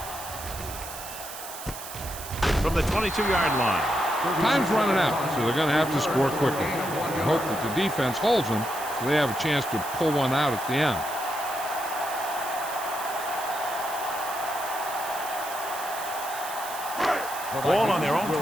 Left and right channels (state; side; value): noise; right; hiss, 11 dB below the sound